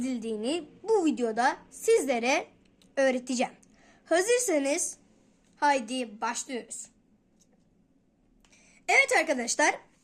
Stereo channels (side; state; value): both; identical; correlation 1.00